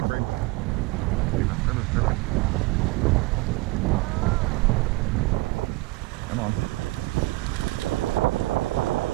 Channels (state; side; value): quieter; left; 21.3 dB